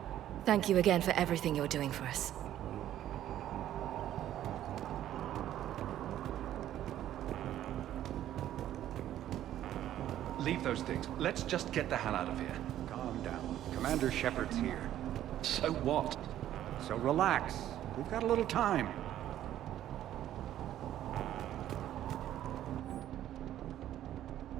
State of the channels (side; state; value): left; quieter; 12.1 dB